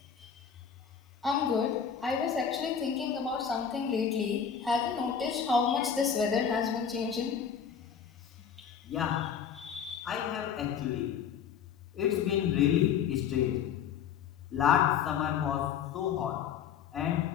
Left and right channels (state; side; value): quieter; right; 7.6 dB